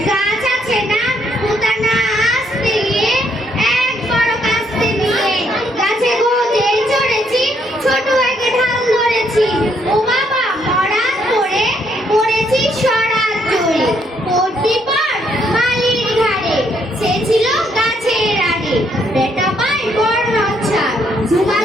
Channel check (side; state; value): both; normal; correlation 0.72